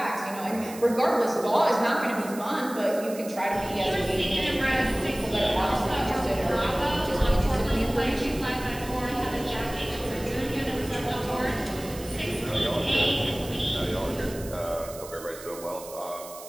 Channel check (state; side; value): noise; right; hiss, 15 dB below the sound